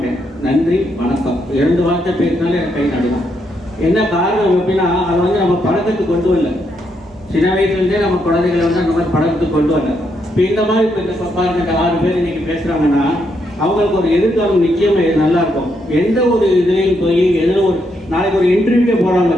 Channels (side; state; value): both; normal; correlation 0.78